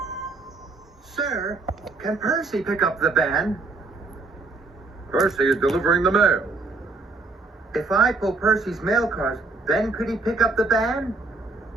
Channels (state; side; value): quieter; left; 3.6 dB